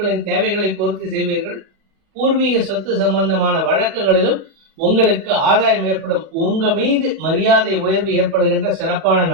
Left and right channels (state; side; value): late; left; 40 ms